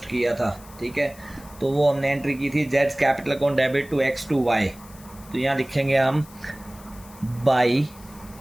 किया था। ठीक है, तो वो हमने एंट्री की थी Jades capital account debit to x to Y. तो यहाँ लिखेंगे हम by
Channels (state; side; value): noise; left; hiss, 22 dB below the sound